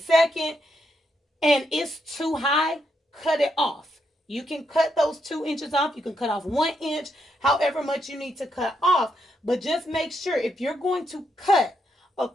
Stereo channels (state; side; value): normal; both; correlation 0.79